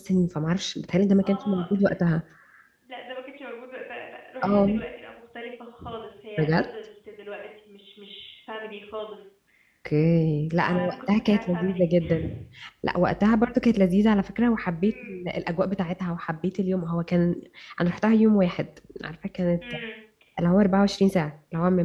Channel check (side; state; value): both; identical; correlation 1.00